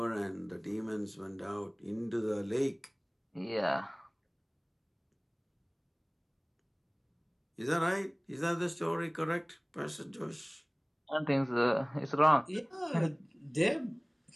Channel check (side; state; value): both; identical; correlation 1.00